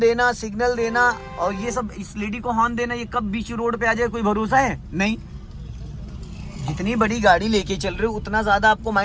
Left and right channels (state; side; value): identical; both; correlation 1.00